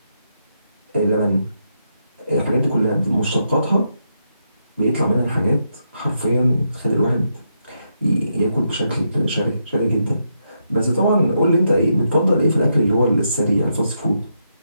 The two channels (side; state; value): both; inverted; correlation -0.81